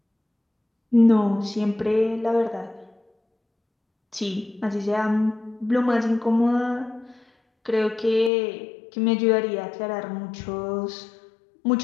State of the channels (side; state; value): right; drops out; at 8.3 s